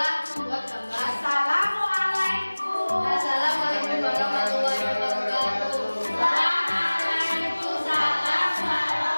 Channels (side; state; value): both; inverted; correlation -1.00